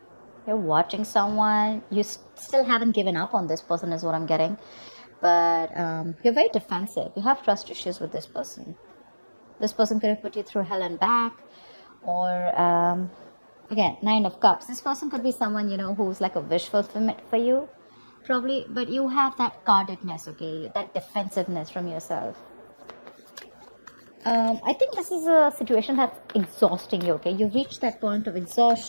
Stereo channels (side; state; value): both; inverted; correlation -1.00